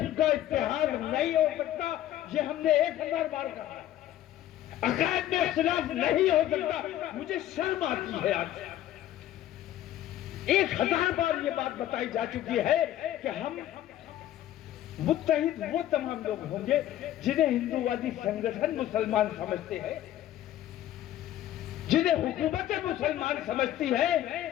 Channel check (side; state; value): right; quieter; 12.8 dB